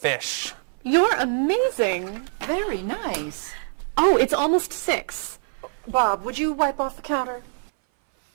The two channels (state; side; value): silent; left; 58 dB below the other